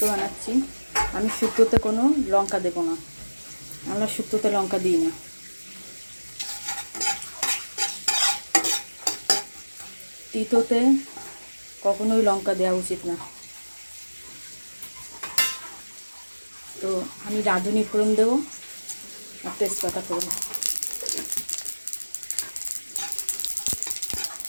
বানাচ্ছি। আমি শুক্তোতে কোনো লঙ্কা দেবো না, আমরা শুক্তোতে লঙ্কা দিই না। তিতোতে কখনোই লঙ্কা দেওয়া উচিত না। তো আমি রাঁধুনি ফোড়ন দেবো আর তেজপাতা ফোড়ন।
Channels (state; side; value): inverted; both; correlation -1.00